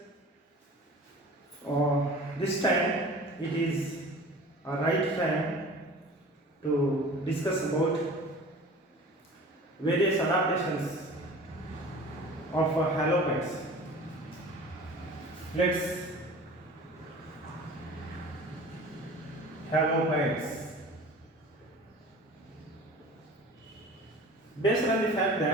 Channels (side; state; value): both; normal; correlation 0.41